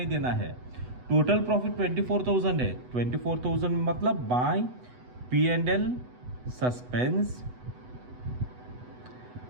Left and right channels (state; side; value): late; left; 8.1 ms